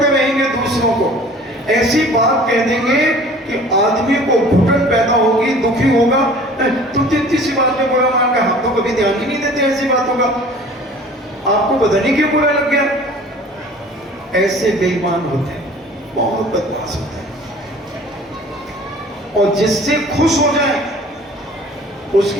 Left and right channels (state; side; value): normal; both; correlation 0.47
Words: रहेंगे दूसरों को। ऐसी बात कह देंगे कि आदमी को घुटन पैदा होगी, दुखी होगा। तुम तो इतनी सी बात में बुरा मान गए, हम तो कभी ध्यान ही नहीं देते ऐसी बातों का, आपको पता नहीं क्यों बुरा लग गया। ऐसे बेईमान होते हैं, बहुत बदमाश होते हैं। और जिससे खुश हो जाए